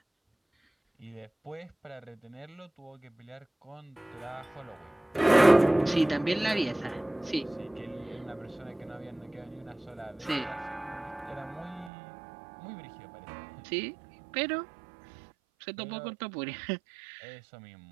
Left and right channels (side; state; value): left; drops out; at 11.9 s